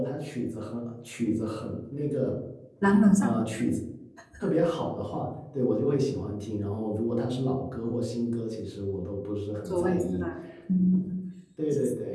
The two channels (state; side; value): identical; both; correlation 1.00